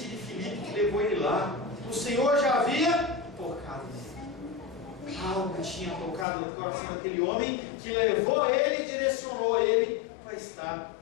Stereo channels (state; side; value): drops out; right; at 6.2 s